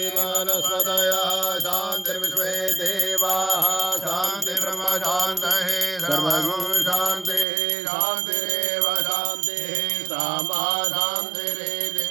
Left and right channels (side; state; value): left; drops out; at 7.5 s